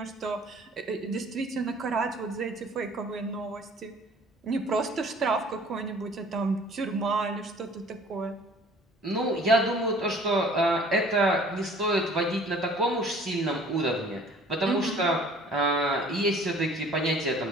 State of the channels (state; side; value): normal; both; correlation 0.51